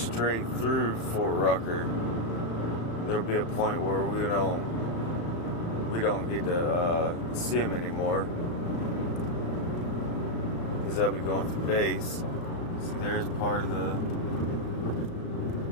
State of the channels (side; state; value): right; late; 35 ms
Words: through Fort Rucker. There'll be a point where we don't get to see them anymore, because they'll be going through base. See, there's part of the